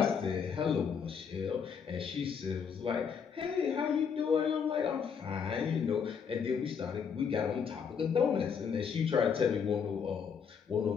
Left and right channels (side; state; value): right; quieter; 6.7 dB